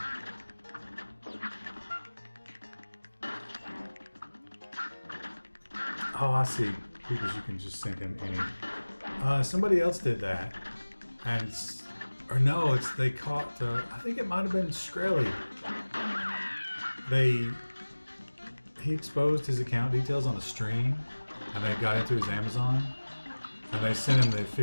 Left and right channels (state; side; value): inverted; both; correlation -1.00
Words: Oh, I see. Because you can just send him any. Somebody else did that, and or no, they caught. I think it might have been Shkreli. He exposed his account details on a stream, and they got into his Amazon, and they sent him the